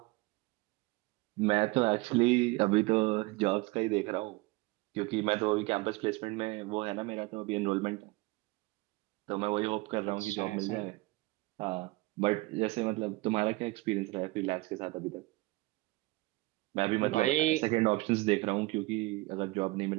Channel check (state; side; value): quieter; left; 22.0 dB